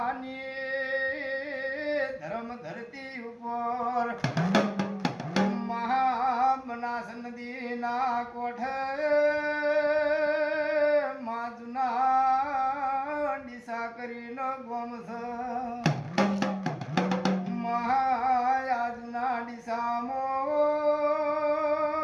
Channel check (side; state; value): both; identical; correlation 1.00